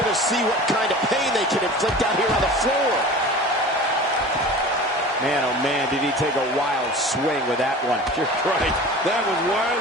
to see what kind of pain they can inflict out here on the floor. Man, oh man, did he take a wild swing with that one. You're right. That was wild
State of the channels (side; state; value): both; normal; correlation 0.38